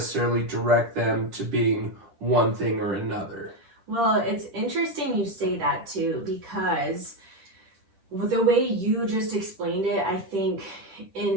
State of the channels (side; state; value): left; late; 10 ms